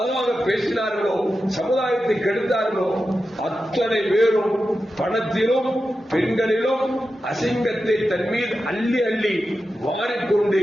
பேசினார்களோ சமுதாயத்தை கெடுத்தார்களோ அத்தனை பேரும் பணத்திலும் பெண்களிலும் அசிங்கத்தை தன் மீது அள்ளி அள்ளி வாரிக்கொண்டு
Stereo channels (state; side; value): normal; both; correlation 0.91